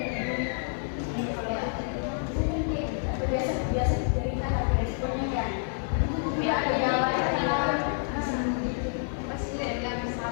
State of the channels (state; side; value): silent; right; 59 dB below the other